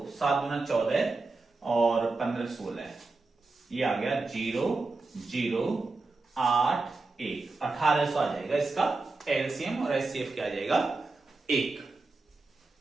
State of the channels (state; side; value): quieter; left; 3.6 dB